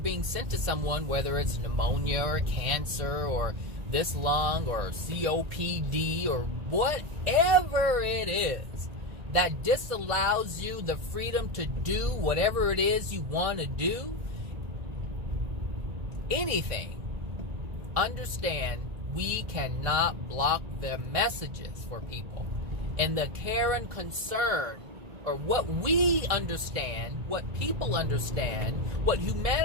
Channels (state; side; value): late; left; 1.9 ms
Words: sent to someone, whether it's pneumonia or cancer or this lung or COPD or whatever it is, that disallows you the freedom to do whatever it is you want to do, anything, understand we cannot block the messages for people. And the care and concern, or what we understand, what people understand, what